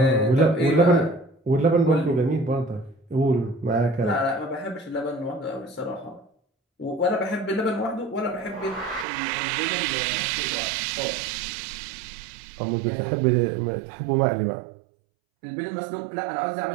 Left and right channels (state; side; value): drops out; left; at 9.1 s